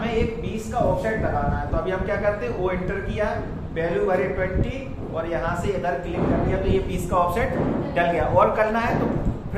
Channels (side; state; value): both; identical; correlation 1.00